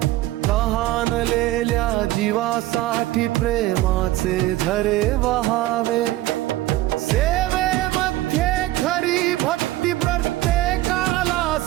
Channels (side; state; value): left; quieter; 16.8 dB